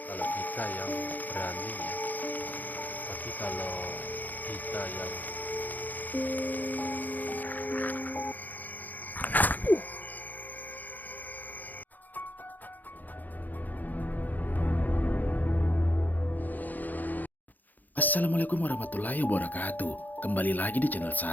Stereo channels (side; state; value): right; late; 0.084 ms